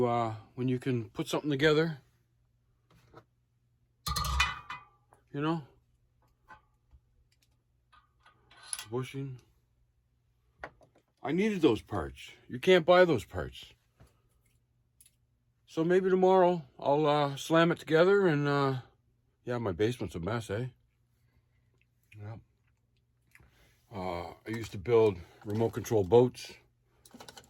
can put something together. You know, bushing, I needed those parts. You can't buy those parts. So maybe tomorrow I'll slam it together and yeah, my basement's a mess, eh? Yeah. I used to build remote control boats,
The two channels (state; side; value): identical; both; correlation 1.00